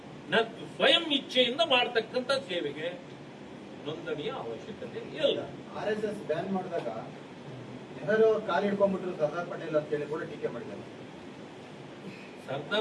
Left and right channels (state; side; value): identical; both; correlation 1.00